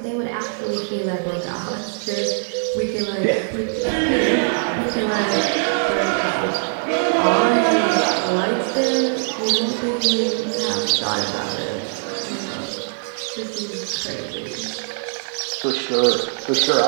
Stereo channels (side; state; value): left; silent; digital silence